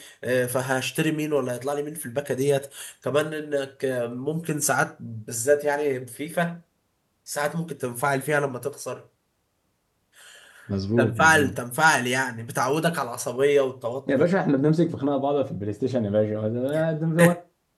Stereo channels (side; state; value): both; identical; correlation 1.00